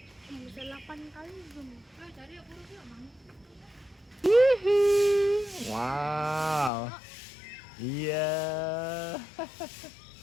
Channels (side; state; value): right; drops out; at 6.7 s